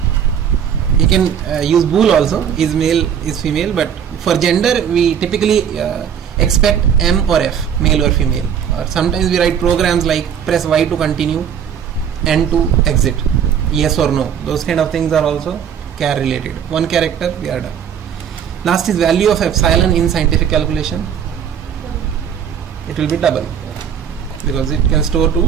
You can use bool also, is male, is female, but for gender we typically expect M or F, male or female. Or sometimes we write programs like press Y to continue, N to exit, yes or no. Those kind of things are also char related. One character, we are done. Last is value of epsilon in scientific calculation. It will be double because it can store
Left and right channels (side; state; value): left; quieter; 8.3 dB